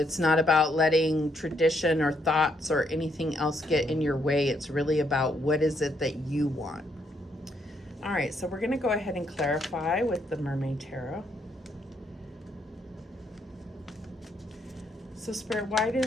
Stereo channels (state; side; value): normal; both; correlation 0.74